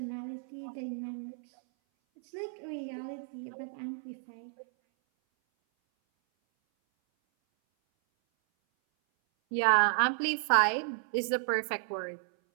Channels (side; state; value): left; silent; 56 dB below the other